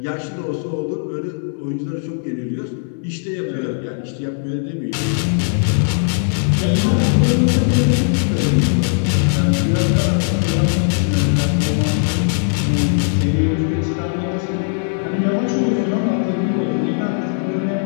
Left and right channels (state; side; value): silent; right; 59 dB below the other